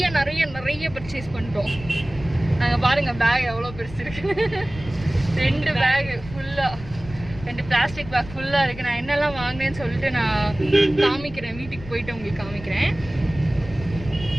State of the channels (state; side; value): noise; left; rumble, 14 dB below the sound